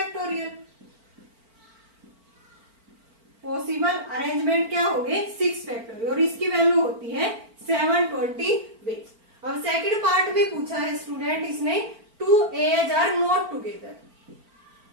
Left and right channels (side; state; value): left; late; 4.4 ms